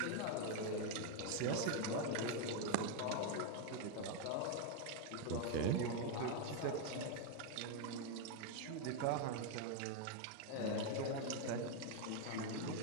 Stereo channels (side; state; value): both; different; correlation 0.01